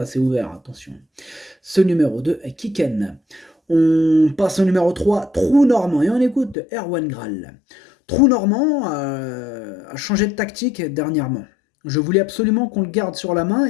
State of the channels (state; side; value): drops out; right; at 6.6 s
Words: ouvert, attention. Ce numéro 2 est Kiken. On passe au numéro 3, Trou Normand, et on écoute Erwan Graal. Trou Normand a changé de tactique dernièrement. Je voulais absolument qu'on le garde sur la main